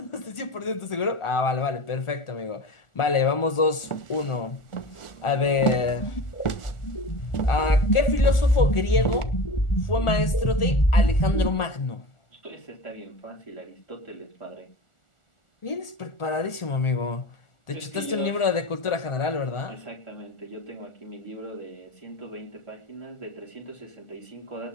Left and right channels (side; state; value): right; late; 1.4 ms